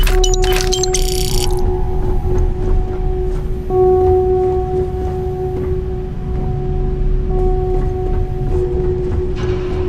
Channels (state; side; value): identical; both; correlation 1.00